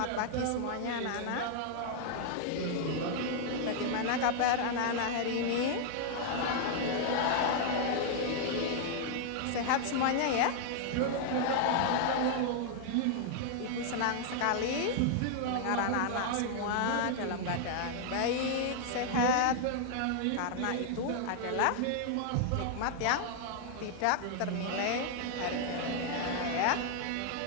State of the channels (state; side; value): different; both; correlation -0.01